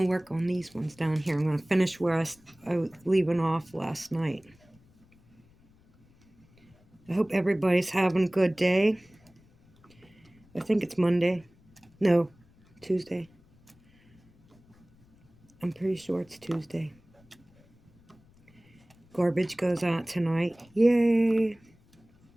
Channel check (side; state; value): left; noise; rumble, 30 dB below the sound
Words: work on these ones down here. I'm going to finish where I was leaving off last night. I hope everybody's having a good day. I think it's Monday. No, Tuesday. I'm pretty sure it's Tuesday. Garbage goes out tonight. Yay!